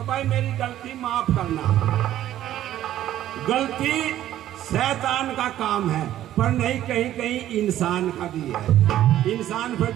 भाई मेरी गलती माफ करना। गलती शैतान का काम है, पर नहीं कहीं कहीं इंसान का भी है, इंसान पे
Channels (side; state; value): left; quieter; 12.7 dB